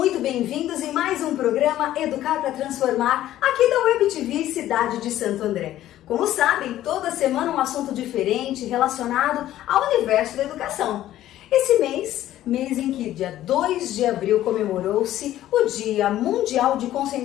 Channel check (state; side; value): quieter; right; 13.4 dB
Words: bem-vindos em mais um programa Educar para Transformar, aqui da Web TV Cidade de Santo André. Como sabem, toda semana um assunto diferente relacionado ao universo da educação. Esse mês em que dia 2 de abril comemorou-se o Dia Mundial de